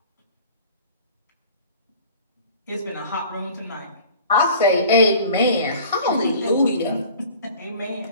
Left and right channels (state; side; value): inverted; both; correlation -0.45